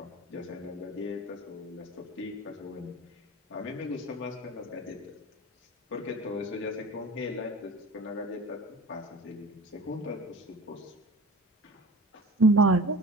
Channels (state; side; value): normal; both; correlation 0.38